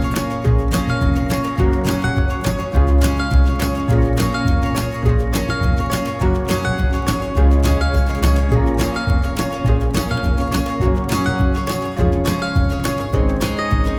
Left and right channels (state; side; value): identical; both; correlation 1.00